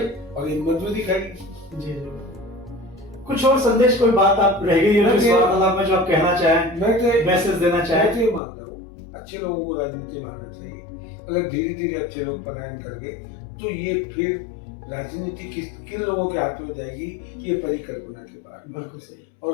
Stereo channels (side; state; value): right; drops out; at 8.4 s